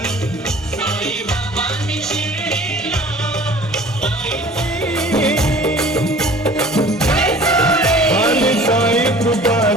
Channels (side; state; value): both; normal; correlation 0.47